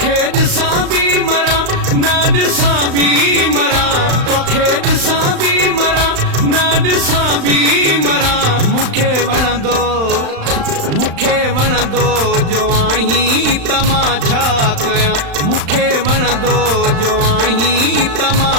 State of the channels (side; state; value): left; late; 35 ms